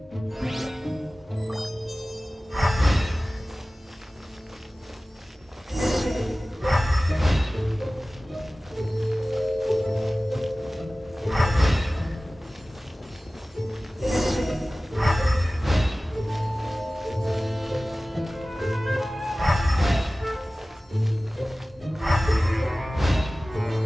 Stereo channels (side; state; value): both; normal; correlation 0.97